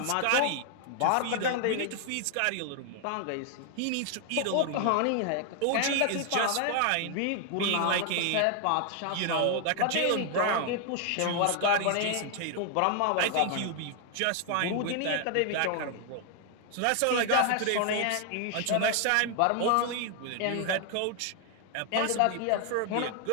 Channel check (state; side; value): different; both; correlation 0.00